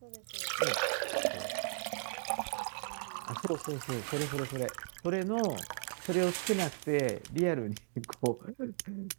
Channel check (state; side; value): silent; left; digital silence